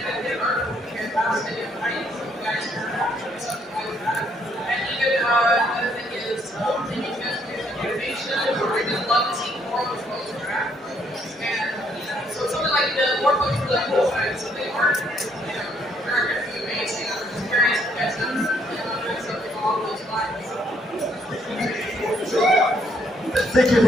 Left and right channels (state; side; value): normal; both; correlation 0.69